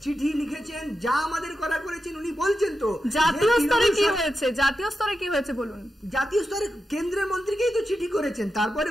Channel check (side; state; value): both; normal; correlation 0.89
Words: চিঠি লিখেছেন, যা আমাদের করা করেছেন উনি বলছেন। তো জাতীয় স্তরে কি হয়েছে? জাতীয় স্তরে কি হয়েছে বলুন। জাতীয় স্তরে কেন্দ্রের মন্ত্রীকেই তো চিঠি করেছেন। তারপরে